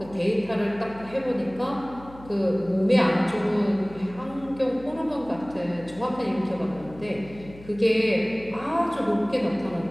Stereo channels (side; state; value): left; noise; hum, 19 dB below the sound